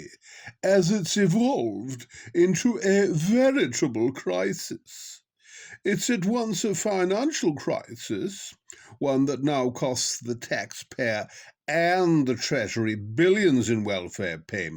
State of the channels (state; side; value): identical; both; correlation 1.00